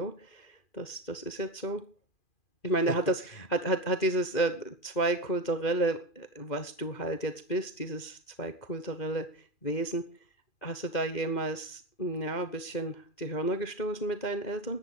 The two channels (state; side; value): late; right; 2.4 ms